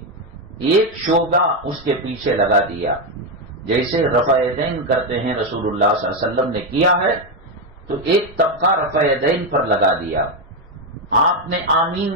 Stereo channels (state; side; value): normal; both; correlation 0.07